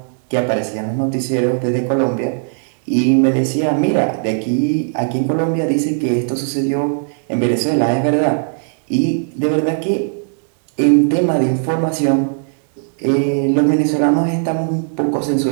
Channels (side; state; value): left; silent; digital silence